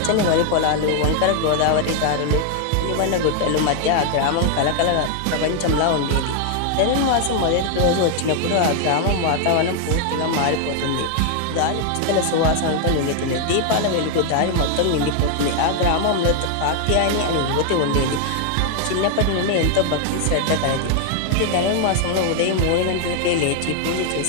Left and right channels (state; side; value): different; both; correlation 0.00